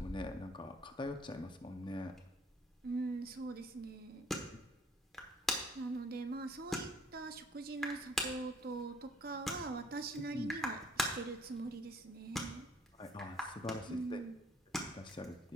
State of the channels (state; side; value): normal; both; correlation 0.60